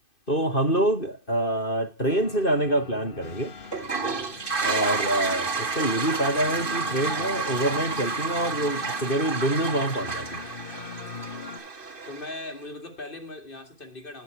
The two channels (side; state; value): right; late; 2.5 ms